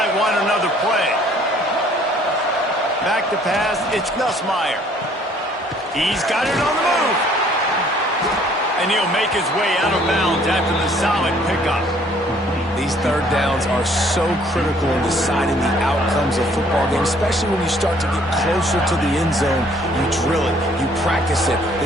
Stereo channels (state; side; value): normal; both; correlation 0.60